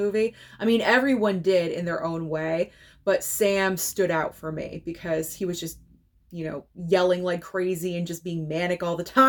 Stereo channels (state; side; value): identical; both; correlation 1.00